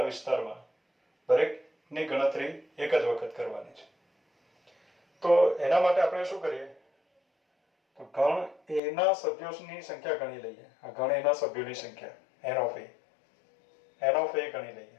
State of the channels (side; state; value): right; drops out; at 8.8 s